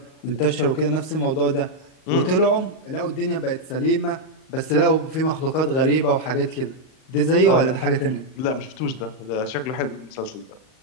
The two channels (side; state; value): right; late; 38 ms